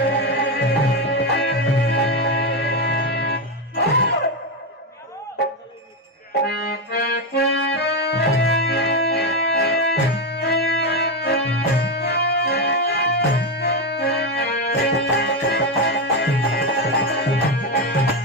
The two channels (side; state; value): both; normal; correlation 0.10